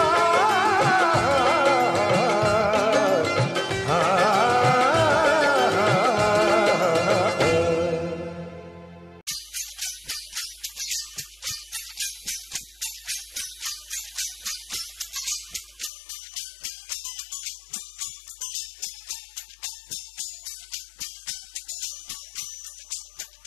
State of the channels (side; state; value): right; drops out; at 15.9 s